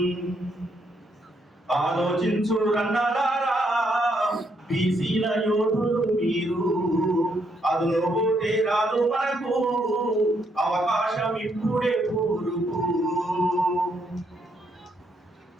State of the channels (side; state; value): both; normal; correlation 0.75